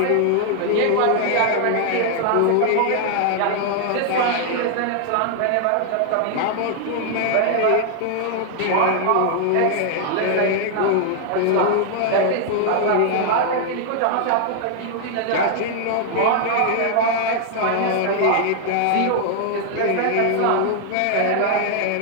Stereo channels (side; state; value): both; different; correlation 0.00